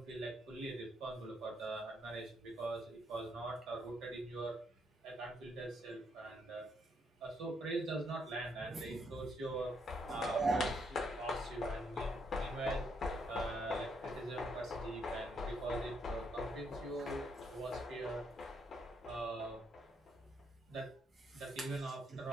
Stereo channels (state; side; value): normal; both; correlation 0.74